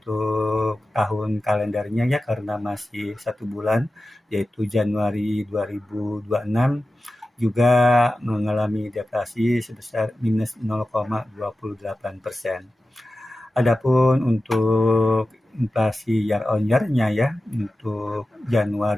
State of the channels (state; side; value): normal; both; correlation 0.94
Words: tahun kalendernya ya, karena masih 1 bulan yaitu Januari 2026 juga mengalami deflasi sebesar minus 0,28%. Adapun untuk inflasi year on year-nya ya, untuk